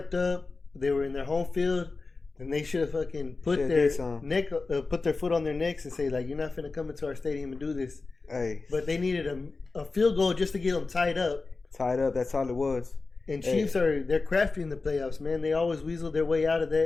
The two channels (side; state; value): right; quieter; 3.8 dB